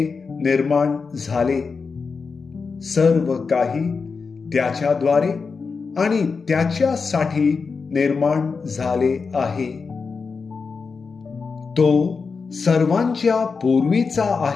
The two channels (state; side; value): quieter; right; 4.9 dB